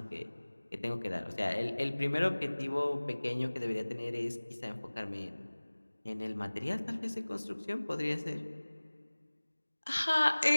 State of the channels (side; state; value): both; inverted; correlation -1.00